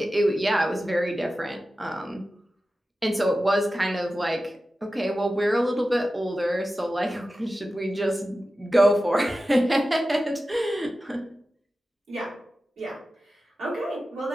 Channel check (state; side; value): normal; both; correlation 0.94